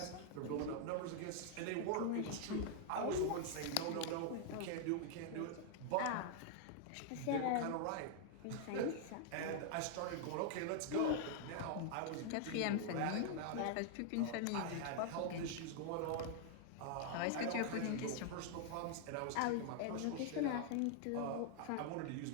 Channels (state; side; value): different; both; correlation 0.00